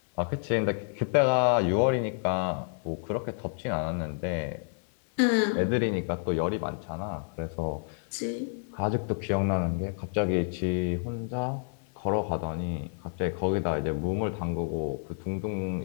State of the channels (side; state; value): right; silent; 57 dB below the other